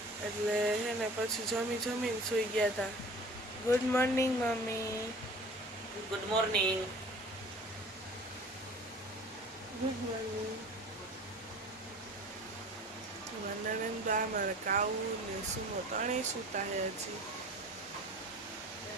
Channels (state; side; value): normal; both; correlation 0.43